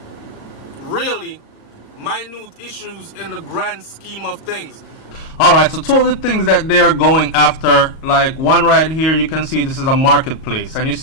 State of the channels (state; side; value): late; right; 38 ms